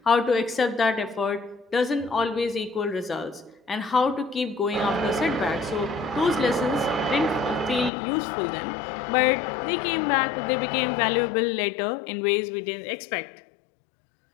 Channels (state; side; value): drops out; right; at 7.9 s